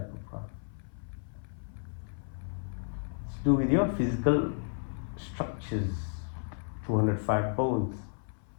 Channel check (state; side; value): silent; right; 56 dB below the other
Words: of prana. It's to do with your physical structures, 205 bones,